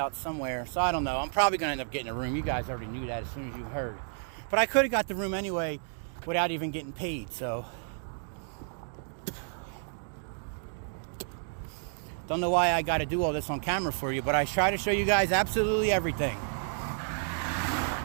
somewhere. So I don't know. I'm probably going to end up getting a room. You guys already knew that as soon as you heard. But I could have got the room anyway without even getting paid. So don't know why I got to do all this on camera for you. But I try to show you guys absolutely everything.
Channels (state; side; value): silent; left; 57 dB below the other